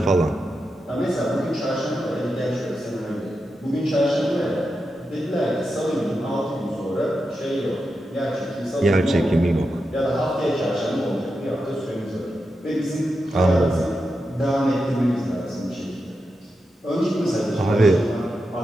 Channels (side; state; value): both; normal; correlation 0.88